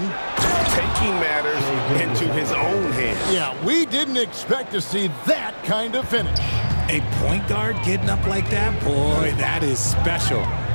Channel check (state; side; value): inverted; both; correlation -1.00